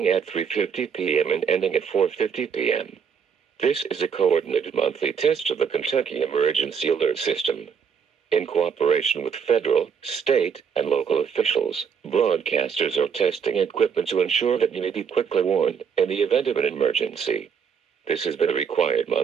at 3:50 p.m. and ending at 4:50 p.m. This is a coordinated monthly test of the Kentucky Emergency Alert System. In cooperation with federal, state, and local officials, broadcasters are testing equipment to ensure that you may be quickly warned in the event of an emergency. This has been a required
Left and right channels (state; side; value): quieter; left; 6.8 dB